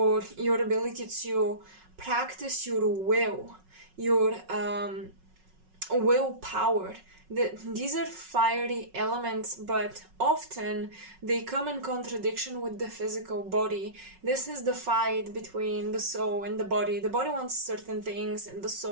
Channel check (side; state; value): left; late; 5.4 ms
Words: your ability to practice your will, your willpower. These are fiery elements, but often they come in contradiction with the physical body. This is the fight between the soul and the body. The body wants certain things and the